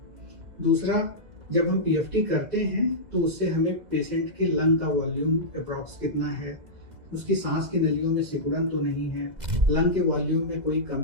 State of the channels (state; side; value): late; left; 2.0 ms